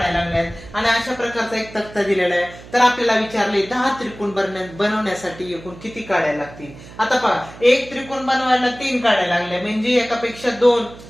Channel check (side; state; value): right; noise; hum, 18 dB below the sound